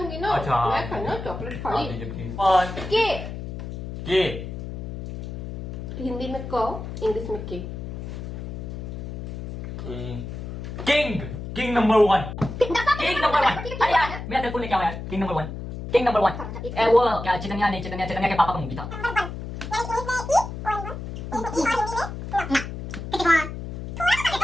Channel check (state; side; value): noise; left; hum, 8 dB below the sound